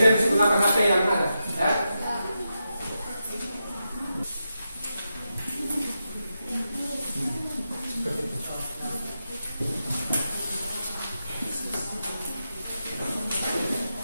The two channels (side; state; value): both; inverted; correlation -0.88